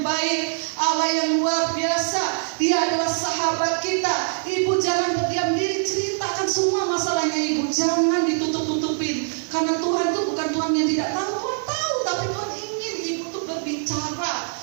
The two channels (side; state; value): left; silent; digital silence